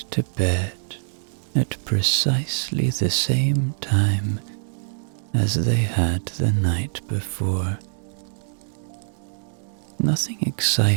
to bed at precisely the same time as they had the night before. Nothing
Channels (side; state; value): left; silent; digital silence